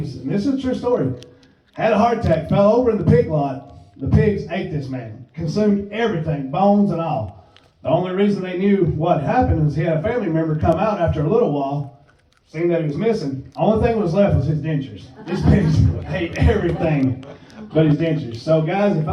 and this is a true story. Had a heart attack, fell over in the pig lot. The pigs ate this man, consumed everything, bones and all. The only reason they knew what happened is he had a family member come out after a little while, seeing that he was missing. The only thing that was left was his dentures. These pigs ate everything but his dentures. So guys, if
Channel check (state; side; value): identical; both; correlation 1.00